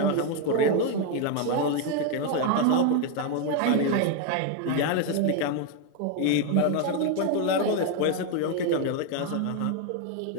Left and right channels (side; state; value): both; different; correlation 0.01